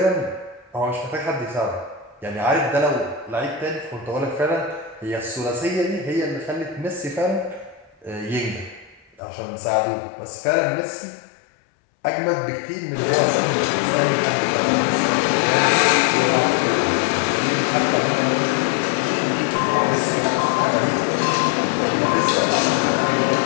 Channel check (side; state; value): right; drops out; at 9.2 s